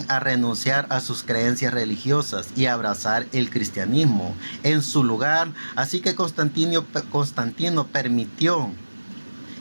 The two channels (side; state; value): both; inverted; correlation -1.00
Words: a renunciar a sus creencias religiosas y abrazar el cristianismo en su lugar. Así que Constantino permitió